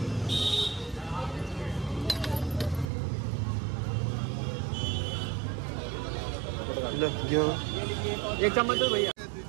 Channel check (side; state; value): left; drops out; at 2.9 s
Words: एक चम्मच दो भैया।